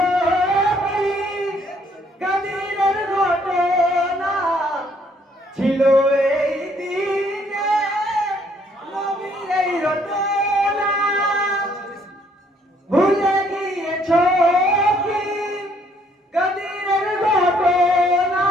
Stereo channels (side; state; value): both; normal; correlation 0.65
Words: কি গাদিরের ঘটনা, ছিল এই দিনে নবীর এই রটনা। ভুলে গিয়েছো কি গাদিরের ঘটনা,